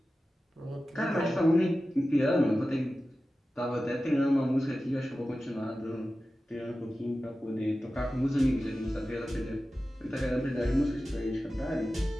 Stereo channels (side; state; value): both; normal; correlation 0.94